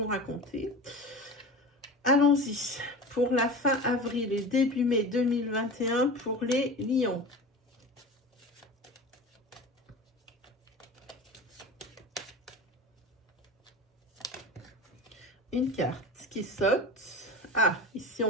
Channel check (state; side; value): normal; both; correlation 0.32